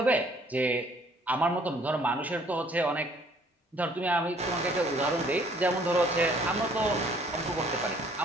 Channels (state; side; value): normal; both; correlation 0.60